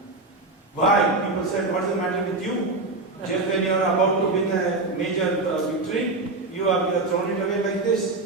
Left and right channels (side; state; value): left; quieter; 3.3 dB